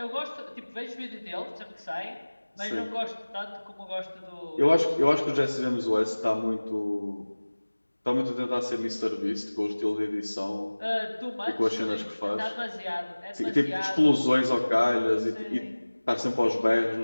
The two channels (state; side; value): inverted; both; correlation -1.00